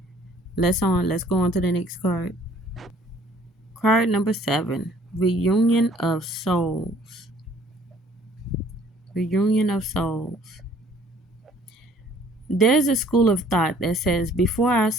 Let's go on to the next card. Card number 7. Reunion of Souls. Reunion of Souls. There's a school of thought that says before our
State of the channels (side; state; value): both; normal; correlation 0.57